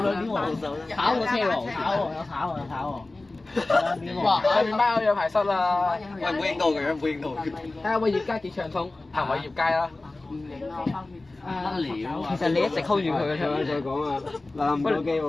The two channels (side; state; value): right; quieter; 3.1 dB